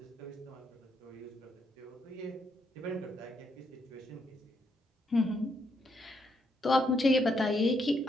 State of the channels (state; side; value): normal; both; correlation 0.76